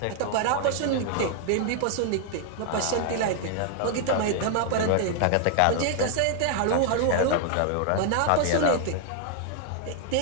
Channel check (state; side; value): different; both; correlation 0.00